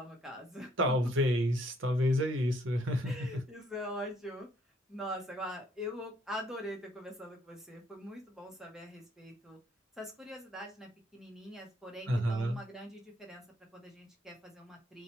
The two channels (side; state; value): both; normal; correlation 0.67